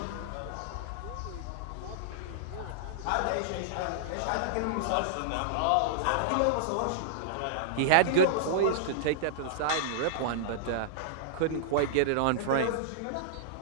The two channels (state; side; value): different; both; correlation -0.02